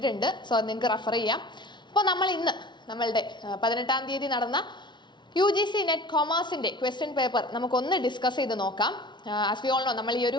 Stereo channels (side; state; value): right; late; 0.22 ms